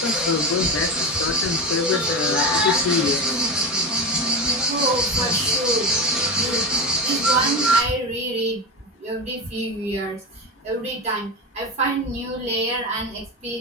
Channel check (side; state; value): both; normal; correlation 0.20